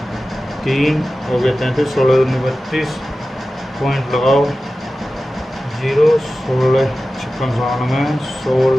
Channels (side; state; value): both; normal; correlation 0.95